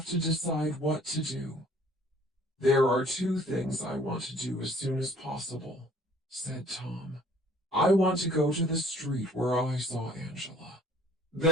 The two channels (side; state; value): both; normal; correlation 0.56